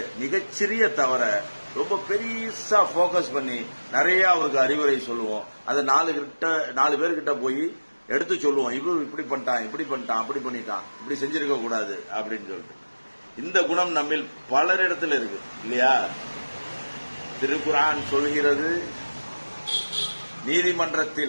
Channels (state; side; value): inverted; both; correlation -1.00